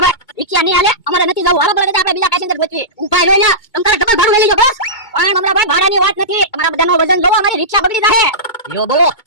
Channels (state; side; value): late; right; 2.2 ms